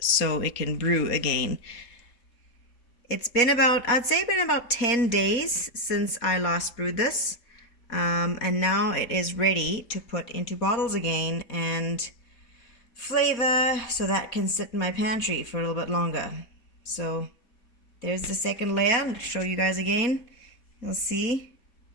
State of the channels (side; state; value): right; late; 4.2 ms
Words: it can brew again. It's been about, I'd say been about 10 days since I last brewed this. And now it is ready to put into bottles again and flavor so that can sit in my pantry for a little bit longer. So there's the second layer. I'll show you guys again. You'll see